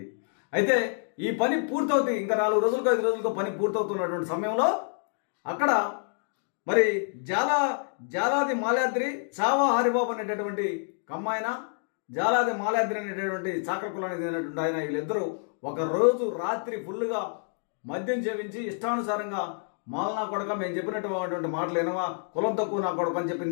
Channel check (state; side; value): silent; right; 59 dB below the other